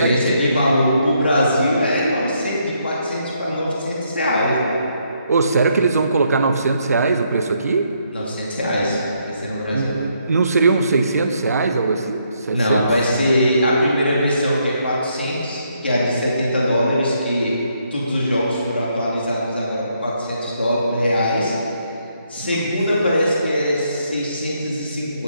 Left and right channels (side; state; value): both; inverted; correlation -0.74